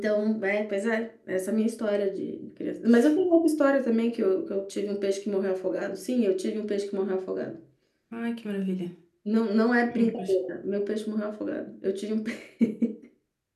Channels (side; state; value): both; identical; correlation 1.00